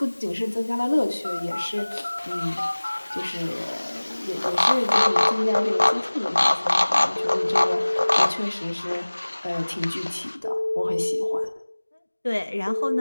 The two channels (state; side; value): inverted; both; correlation -1.00